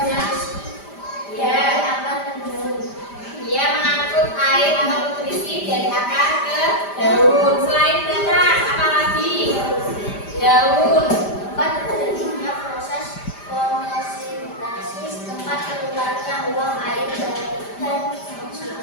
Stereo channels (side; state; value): right; late; 5.0 ms